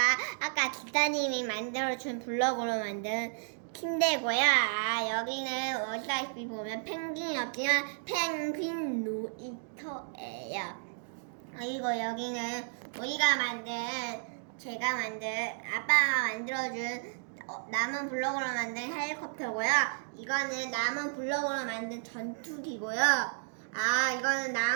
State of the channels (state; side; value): silent; left; digital silence